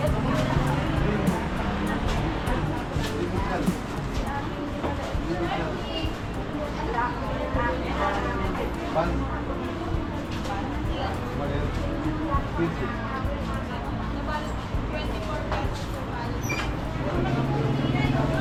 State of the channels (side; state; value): both; identical; correlation 1.00